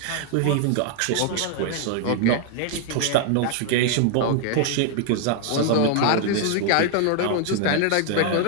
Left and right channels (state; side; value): different; both; correlation 0.00